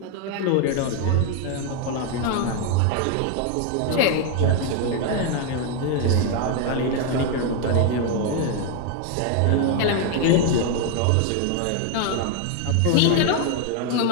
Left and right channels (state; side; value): different; both; correlation 0.01